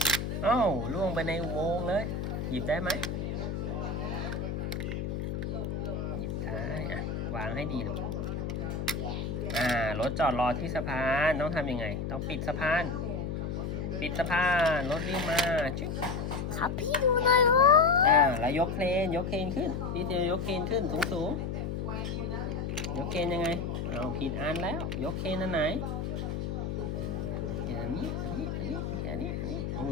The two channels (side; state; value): left; noise; hum, 3 dB below the sound